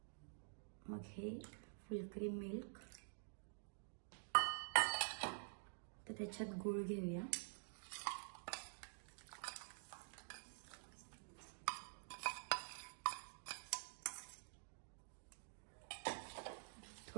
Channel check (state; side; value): silent; left; digital silence